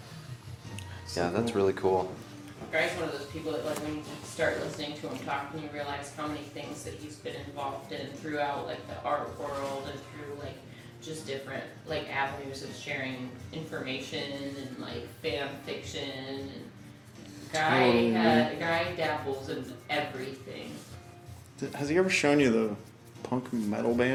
Yeah, that's really cool. Guy's one of those people that like when you start listening to him talk and you realize how many things that he's been involved in throughout like the art world and through like just different like avenues of sharing information and like fan fiction and Guy dabbles in everything. Has he ever shown you the punk metal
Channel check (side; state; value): both; identical; correlation 1.00